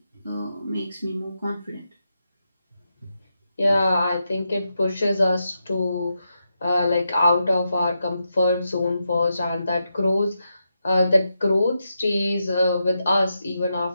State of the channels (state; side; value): inverted; both; correlation -0.86